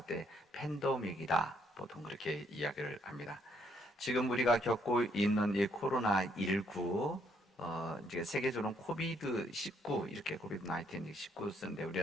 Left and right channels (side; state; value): both; normal; correlation 0.70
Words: 때 팬데믹이다, 보통 그렇게 이야기를 합니다. 지금 우리가 겪고 있는 이 코로나19, 이제 세계적으로는 코비드19 이렇게 코비드-19 19 쓰는데